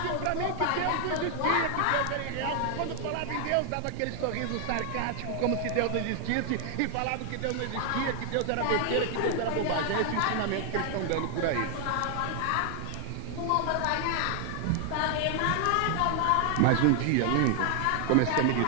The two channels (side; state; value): both; different; correlation 0.00